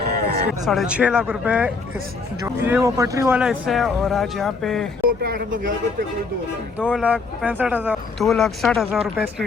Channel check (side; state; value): right; quieter; 4.4 dB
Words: 6.5 लाख रुपये इस जो ये वो पटरी वाला हिस्सा है। और आज यहाँ पे 2,65,000, 2,60,000 रुपये इसकी